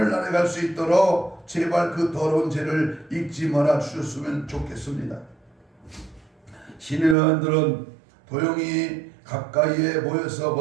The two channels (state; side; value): drops out; left; at 7.2 s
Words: 갈 수 있도록 제발 그 더러운 죄를 잊지 말아 주셨으면 좋겠습니다. 신의원들은 도영이 가까이에 모여서